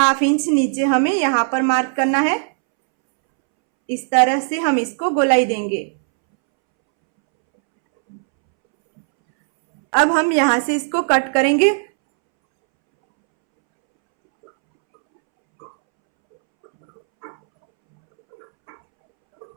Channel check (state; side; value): silent; left; 67 dB below the other